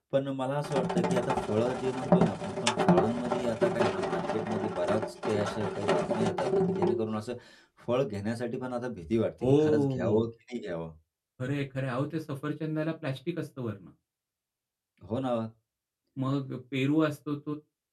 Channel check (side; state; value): both; identical; correlation 1.00